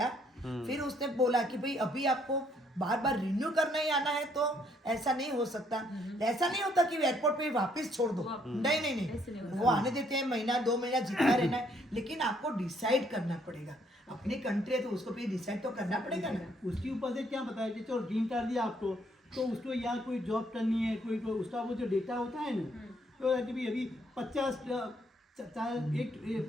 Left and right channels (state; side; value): normal; both; correlation 0.68